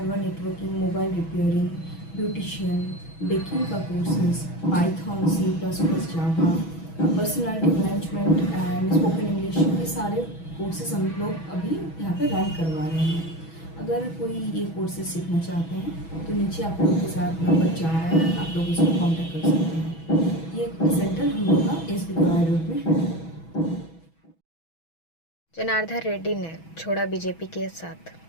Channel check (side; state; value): right; late; 6.1 ms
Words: networking, mobile repairing, beautician, baking का courses, Python, C++, Java, personality management and spoken English, ये सारे कोर्सेज हम लोग अभी यहाँ पे रन करवा रहे हैं। अगर कोई ये कोर्सेज सीखना चाहते हैं तो नीचे आप लोगों के साथ नंबर जा रहा है, आप लोग इसको कॉन्टैक्ट कर सकते हैं। ये सेंटर हम लोग का SB गवाई रोड में है। जनार्दन रेड्डी ने छोड़ा बीजेपी के साथ।